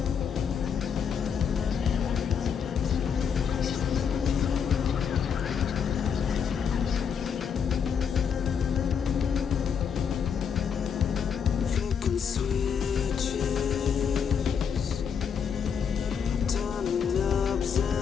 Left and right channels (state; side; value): quieter; right; 7.1 dB